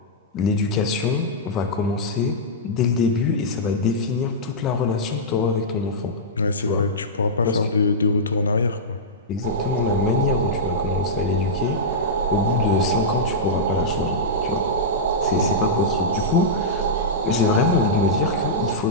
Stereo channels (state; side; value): normal; both; correlation -0.12